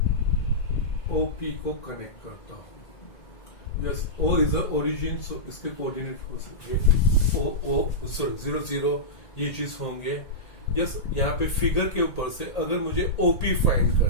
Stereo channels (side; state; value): right; late; 1.8 ms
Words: ओपी को कनेक्ट करता हूं। Yes, O is the origin, so इसके कोऑर्डिनेट हो सकते 0 0, ये चीज होंगे। यस, यहाँ पे फिगर के ऊपर से अगर मुझे ओपी फाइंड